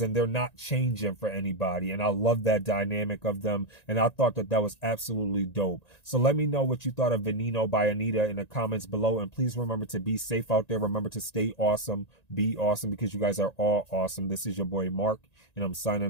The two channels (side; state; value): right; late; 1.9 ms